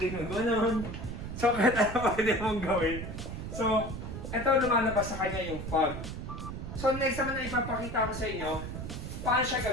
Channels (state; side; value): noise; right; rumble, 7 dB below the sound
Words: gano'n. So, kahit ano pwede mong gawin. So, ito lumalabas sa kanya yung fog. So, next naman na ipapakita ko sa inyo, paano siya